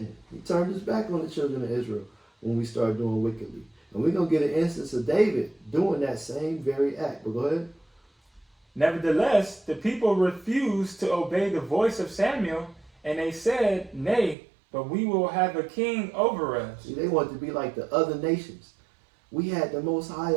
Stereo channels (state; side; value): drops out; left; at 14.4 s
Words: He turned his back on the children of Israel when we started doing wickedly. And we're going to get an instance of David doing that same very act. But go ahead. Nevertheless, the people refused to obey the voice of Samuel, and they said, Nay, but we will have a king over us. See, they wanted to be like the other nations. We had the Most High